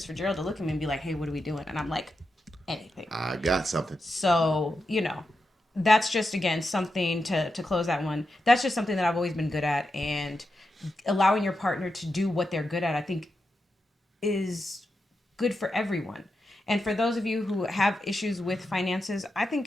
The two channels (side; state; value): both; normal; correlation 0.88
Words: for Gerald to look at me and be like, "Hey, what are we doing?" And I'm like, "Anything." I got something. So, you know, that's just again something to close that one. That's just something that I've always been good at, and allowing your partner to do what they're good at, I think, is good for everyone. And for those of you who have issues with finances, I